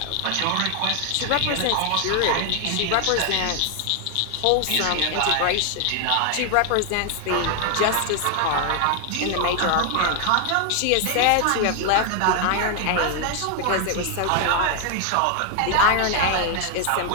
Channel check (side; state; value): both; different; correlation 0.00